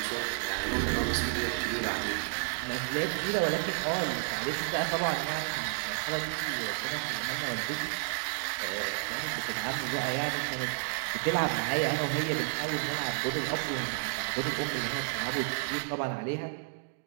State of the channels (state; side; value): silent; left; 57 dB below the other